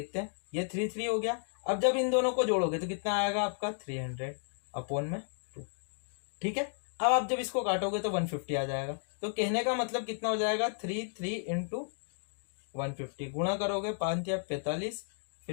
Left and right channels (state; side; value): silent; right; digital silence